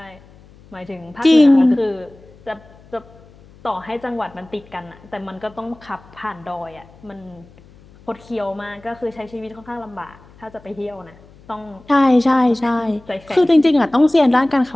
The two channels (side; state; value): left; noise; hum, 25 dB below the sound